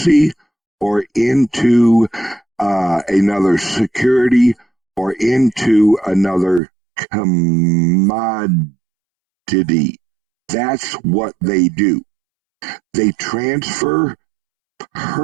or into another security or into another commodity. That's what they do. They transfer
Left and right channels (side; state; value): left; drops out; at 6.6 s